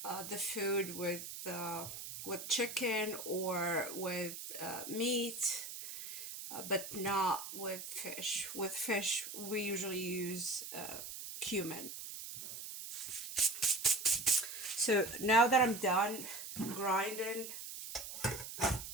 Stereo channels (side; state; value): right; noise; hiss, 9 dB below the sound